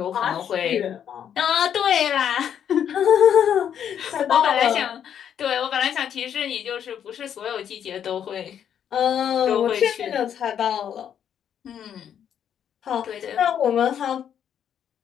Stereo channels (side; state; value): right; quieter; 9.0 dB